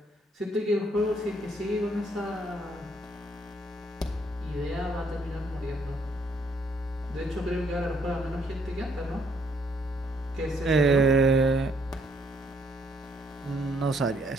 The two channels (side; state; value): both; normal; correlation 0.68